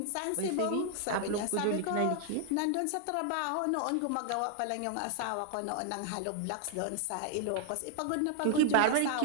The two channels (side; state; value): both; different; correlation 0.00